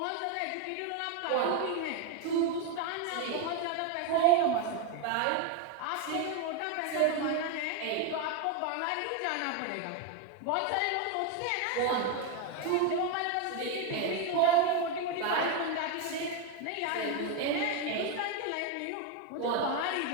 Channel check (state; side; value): different; both; correlation 0.01